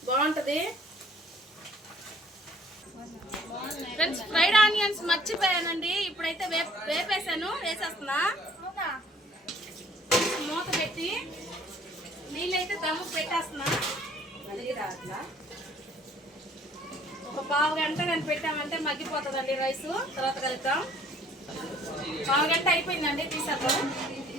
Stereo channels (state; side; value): normal; both; correlation 0.57